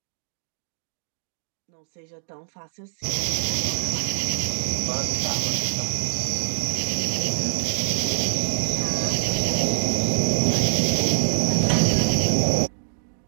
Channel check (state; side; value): silent; left; digital silence